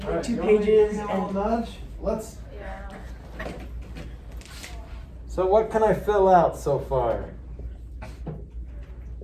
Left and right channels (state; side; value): identical; both; correlation 1.00